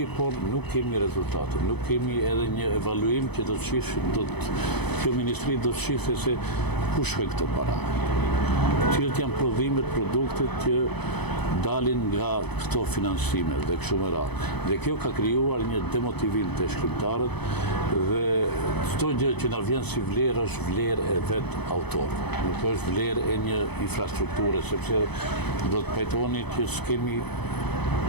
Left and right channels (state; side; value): late; right; 0.98 ms